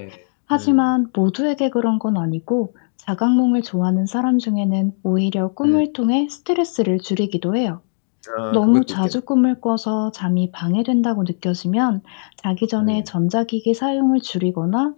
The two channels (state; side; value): silent; right; 66 dB below the other